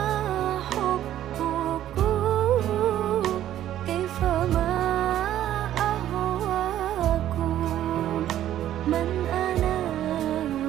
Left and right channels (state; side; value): quieter; left; 12.1 dB